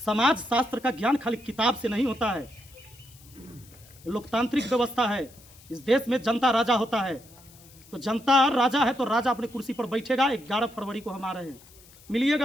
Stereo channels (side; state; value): left; noise; hiss, 24 dB below the sound